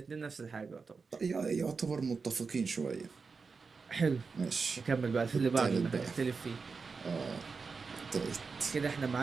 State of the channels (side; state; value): left; quieter; 4.8 dB